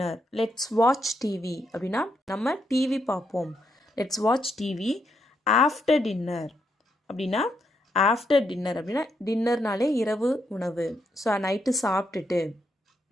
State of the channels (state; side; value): normal; both; correlation 0.79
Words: Let's watch TV அப்படின்னா நம்ம டிவி பார்ப்போம். Let's watch TV after dinner அப்படின்னா ஆஃப்டர் டின்னர் அப்படின்னா டின்னர்னாலே இரவு உணவு. ஸோ நைட்டு